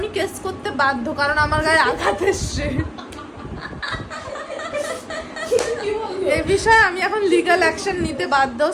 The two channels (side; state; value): both; identical; correlation 1.00